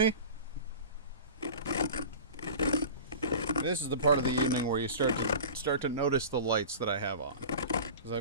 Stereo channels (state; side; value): inverted; both; correlation -0.36